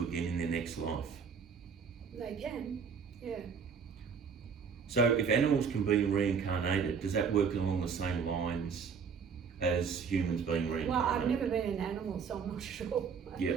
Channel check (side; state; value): left; quieter; 6.2 dB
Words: again in their next life? They can, yeah. So if animals can be reincarnated, does that work along the same lines as humans being reincarnated? Well, I've never been an animal, so I'm not sure. Yeah.